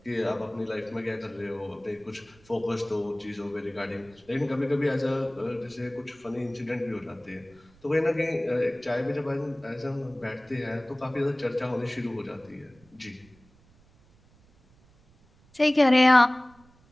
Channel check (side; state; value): right; noise; rumble, 29 dB below the sound